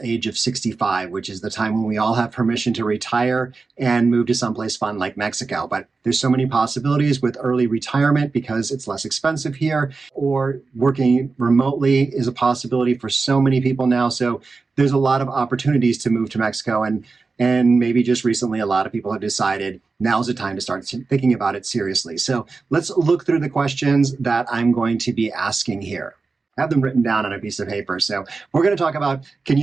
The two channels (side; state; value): left; quieter; 4.2 dB